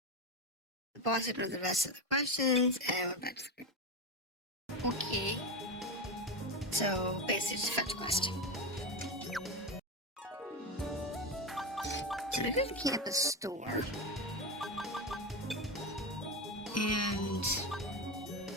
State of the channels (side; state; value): both; normal; correlation 0.16